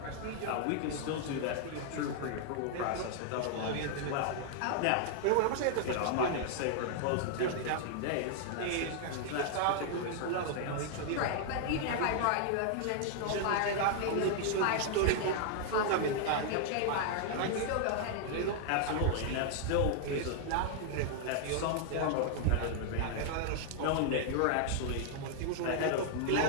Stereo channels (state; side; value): different; both; correlation -0.01